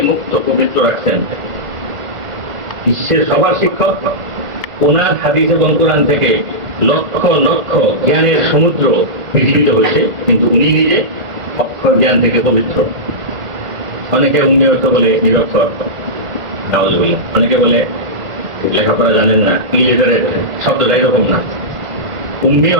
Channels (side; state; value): left; late; 1.5 ms